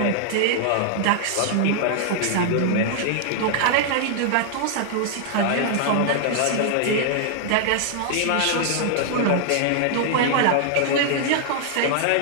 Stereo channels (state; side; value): different; both; correlation -0.01